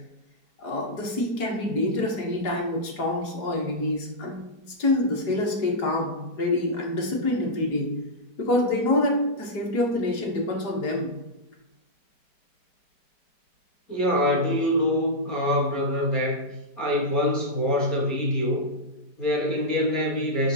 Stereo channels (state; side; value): late; right; 4.9 ms